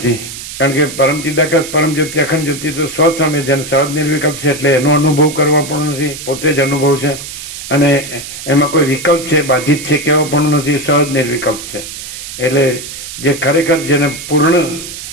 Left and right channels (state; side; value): noise; right; hiss, 10 dB below the sound